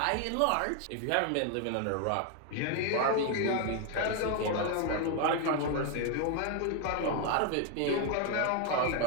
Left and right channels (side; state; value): both; different; correlation 0.00